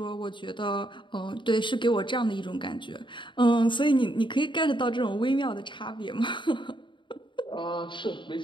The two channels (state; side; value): late; right; 0.23 ms